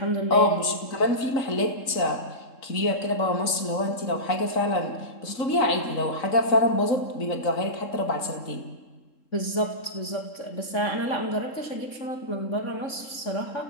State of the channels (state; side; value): late; right; 3.7 ms